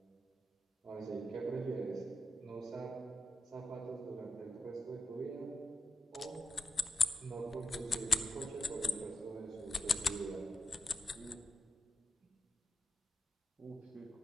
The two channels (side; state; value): both; normal; correlation 0.86